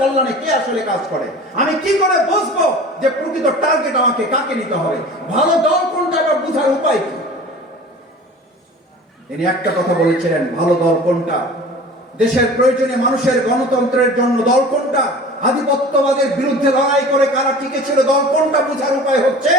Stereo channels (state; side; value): normal; both; correlation 0.40